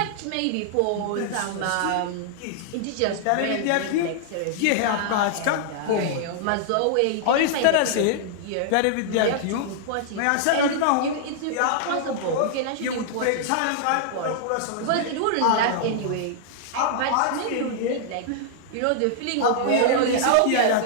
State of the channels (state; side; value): different; both; correlation -0.01